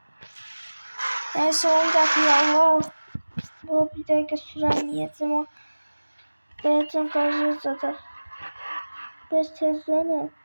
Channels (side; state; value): both; inverted; correlation -1.00